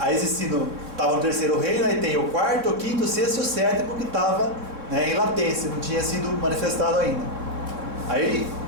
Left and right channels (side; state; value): left; late; 3.6 ms